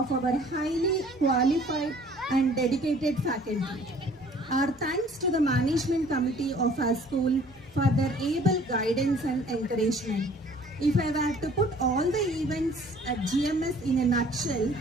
our highly qualified and dedicated faculty. Our thanks to the management committee of our school for their able guidance and encouragement. If I were to put all the events at GMS in a nutshell,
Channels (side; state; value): both; normal; correlation 0.54